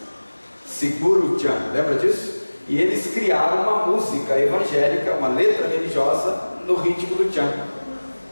Segura o Tchan, lembra disso? E eles criaram uma música evangélica, uma letra religiosa no ritmo do Tchan.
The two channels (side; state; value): both; inverted; correlation -1.00